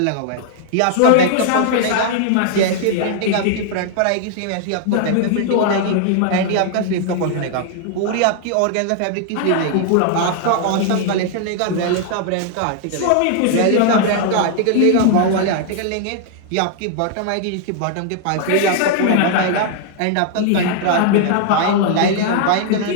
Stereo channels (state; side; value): different; both; correlation 0.00